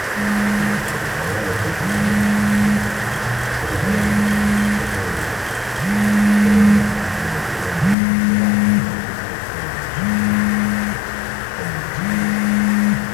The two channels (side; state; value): right; drops out; at 8.0 s